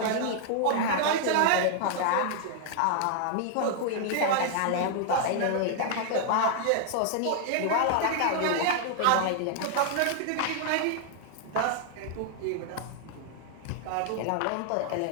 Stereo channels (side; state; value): both; different; correlation 0.00